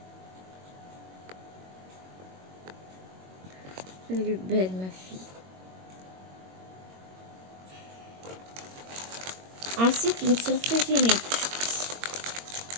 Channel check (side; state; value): left; late; 22 ms